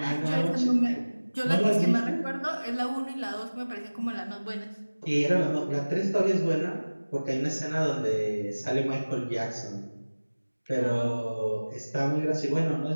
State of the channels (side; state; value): both; inverted; correlation -1.00